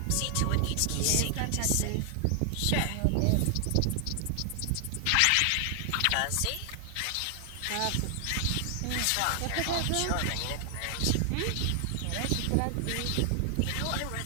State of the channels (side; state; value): both; different; correlation 0.00